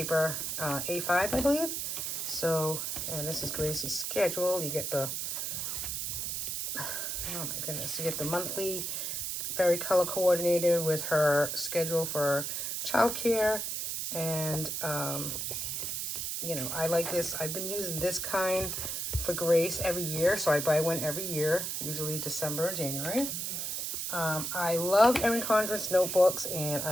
A5, I believe. So, and this is Gracie's schedule. You get the, oh my goodness, you get the monthly, very color coordinated with her schedule for childcare. And I like this. I've been using this kind for Grace every year, so I buy one every year, usually December or January. I love Erin Condren's notebooks, and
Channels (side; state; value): right; noise; hiss, 2 dB below the sound